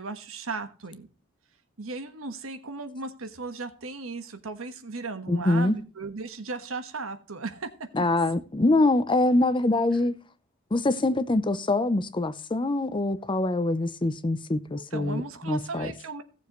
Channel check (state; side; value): normal; both; correlation 0.66